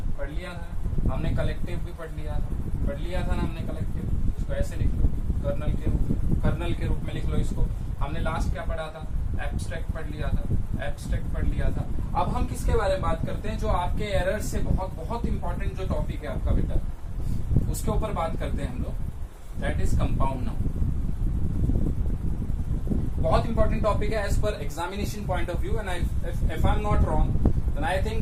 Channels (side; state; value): both; identical; correlation 1.00